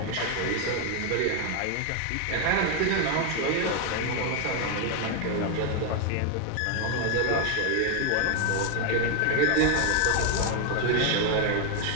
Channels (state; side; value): different; both; correlation 0.01